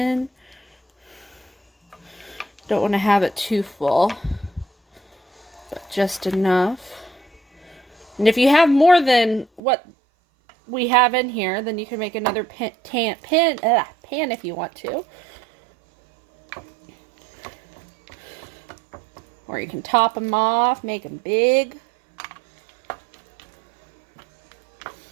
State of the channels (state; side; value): drops out; left; at 9.6 s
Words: Don't want to have it too full, but just enough. And if you have more than what we have in here, then you can make another pan if you want to. Or you can top them off, make them big.